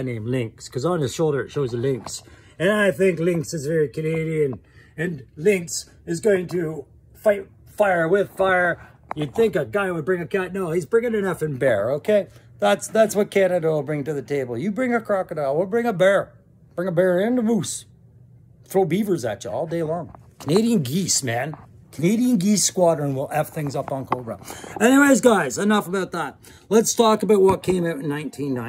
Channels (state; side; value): identical; both; correlation 1.00